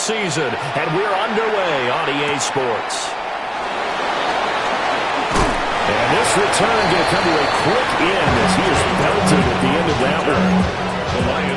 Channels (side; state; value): both; identical; correlation 1.00